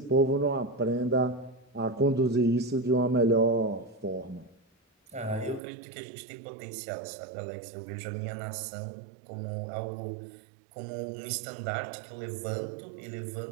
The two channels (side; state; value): left; drops out; at 5.6 s